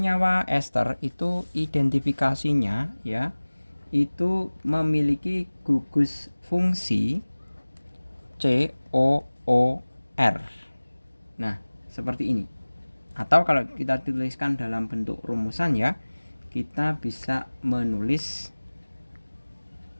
ester itu identifikasinya ya, itu memiliki gugus fungsi COOR. Nah, seperti ini. Atau kalau kita tuliskan dalam bentuk rumusan ya, kita bisa menulis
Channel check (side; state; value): both; inverted; correlation -1.00